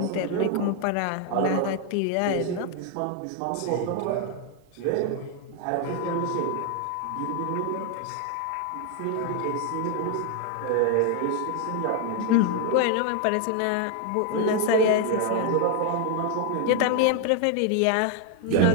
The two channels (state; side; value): different; both; correlation 0.01